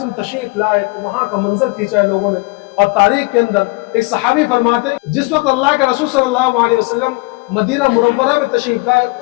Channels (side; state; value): right; quieter; 26.2 dB